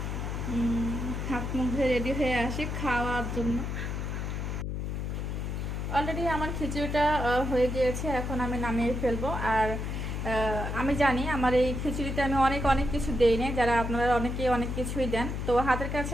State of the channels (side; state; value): left; noise; hum, 3 dB below the sound